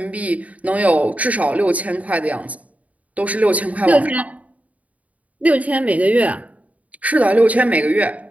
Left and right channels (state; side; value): late; left; 0.070 ms